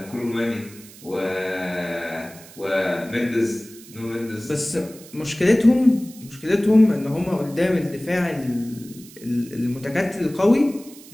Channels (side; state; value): right; noise; hiss, 20 dB below the sound